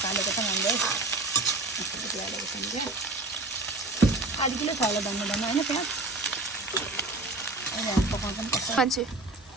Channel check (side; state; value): left; quieter; 3.0 dB